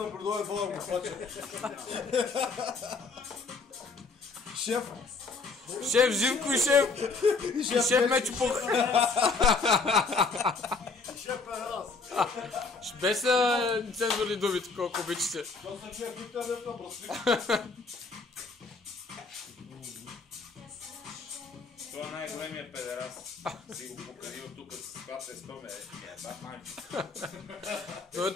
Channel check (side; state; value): right; quieter; 4.2 dB